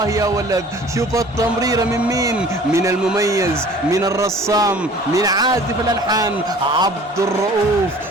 يا ولد، شوف التمريرة من مين؟ من المميز، من الرسام، من عازف الألحان عبد الرؤوف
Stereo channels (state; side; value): normal; both; correlation 0.48